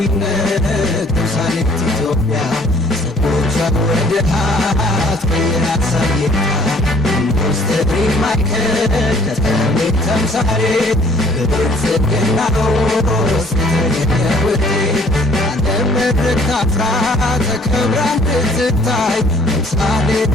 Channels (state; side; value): normal; both; correlation 0.57